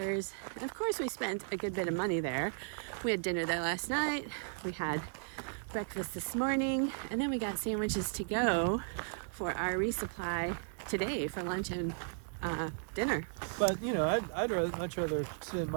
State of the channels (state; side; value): silent; left; digital silence